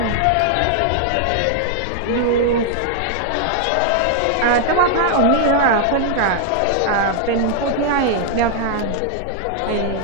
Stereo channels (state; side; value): different; both; correlation 0.00